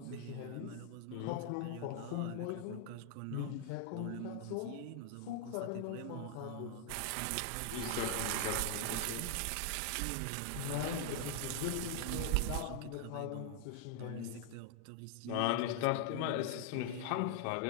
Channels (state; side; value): different; both; correlation 0.00